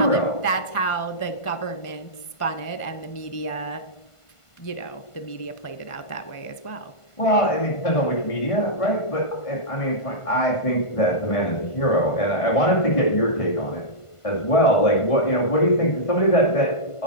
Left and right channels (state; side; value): late; right; 1.5 ms